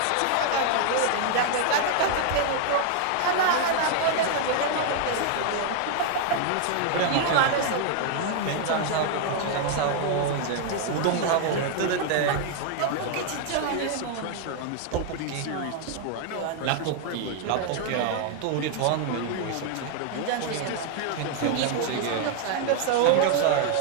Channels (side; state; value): both; different; correlation 0.00